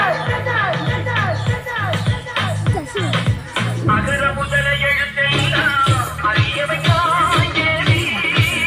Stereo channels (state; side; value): identical; both; correlation 1.00